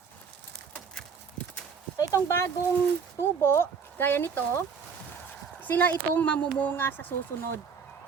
So itong bagong tubo, gaya nito, sila itong mamumunga sa susunod.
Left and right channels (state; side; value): quieter; left; 6.0 dB